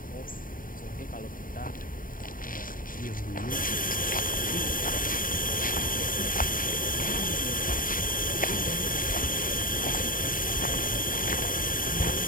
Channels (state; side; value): late; right; 0.40 ms